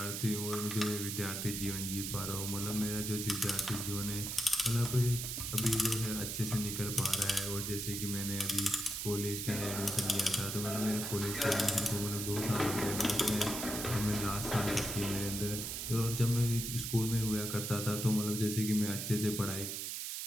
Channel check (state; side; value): noise; right; hiss, 4 dB below the sound